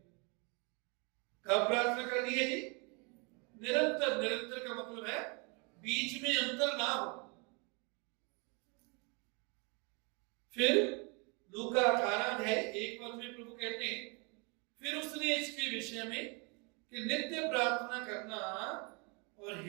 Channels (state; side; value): quieter; left; 32.1 dB